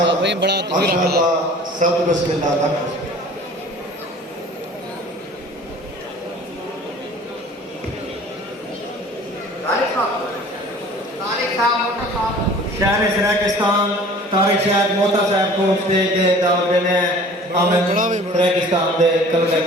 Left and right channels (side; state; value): both; normal; correlation 0.46